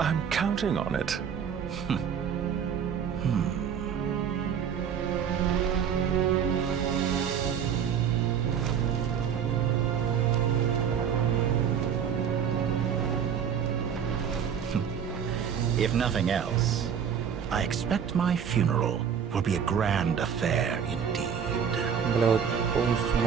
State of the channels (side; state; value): left; quieter; 7.8 dB